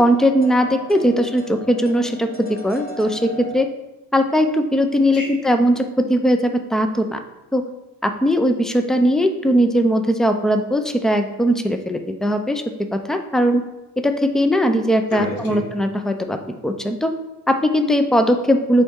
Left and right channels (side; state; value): both; normal; correlation 0.79